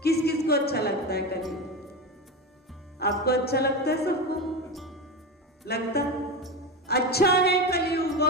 किस किस को अच्छा लगता है कलयुग? आपको अच्छा लगता है? सबको लगता है अच्छा है कलयुग,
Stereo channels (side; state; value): both; normal; correlation 0.20